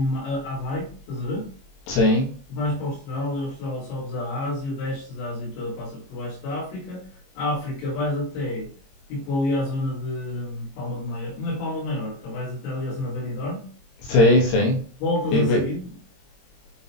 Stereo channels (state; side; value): late; right; 22 ms